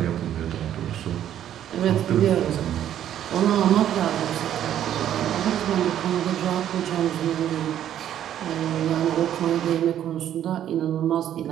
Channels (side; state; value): left; quieter; 10.8 dB